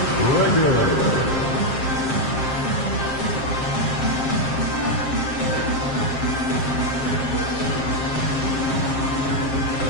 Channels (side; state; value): right; late; 7.5 ms